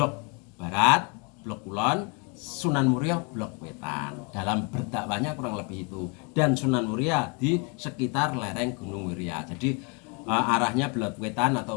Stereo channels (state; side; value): quieter; right; 31.7 dB